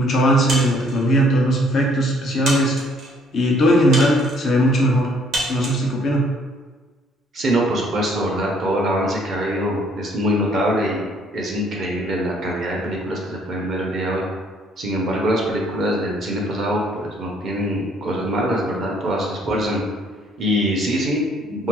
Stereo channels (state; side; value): normal; both; correlation 0.63